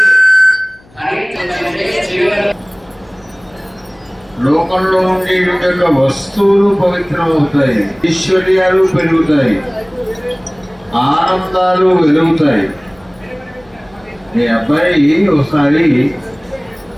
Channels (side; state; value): left; noise; hum, 29 dB below the sound